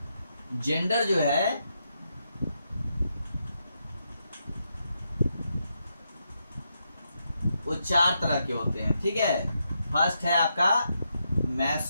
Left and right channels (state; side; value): inverted; both; correlation -0.82